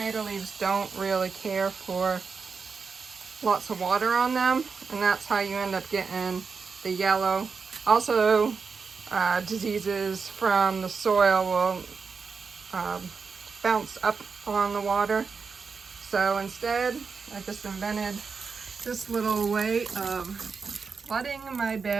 leaves don't really care for lots of water on them, and that's how you end up getting the yellow. Also, diseases from the soil will bounce up on the water. So instead, I just invented this little way of flooding my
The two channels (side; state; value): left; quieter; 5.2 dB